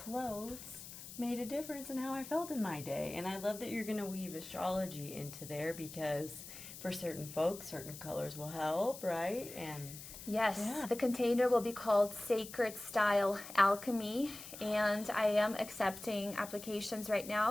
made a difference in how I felt in my day. And I love that you're going to weave astrology into there, because for certain folks, certain colors will help, right? And Yes, Yeah. the container will be called Sacred Style Alchemy, and I am accepting applications right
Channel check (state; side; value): noise; left; hiss, 13 dB below the sound